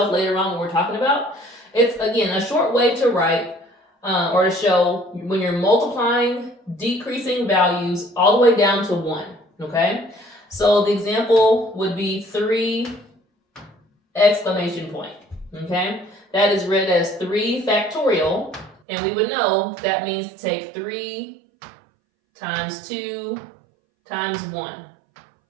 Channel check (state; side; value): drops out; left; at 18.8 s